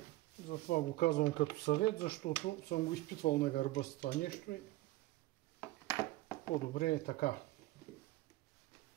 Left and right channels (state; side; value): quieter; left; 17.8 dB